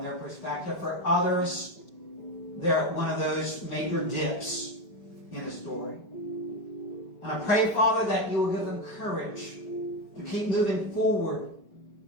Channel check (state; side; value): late; right; 4.9 ms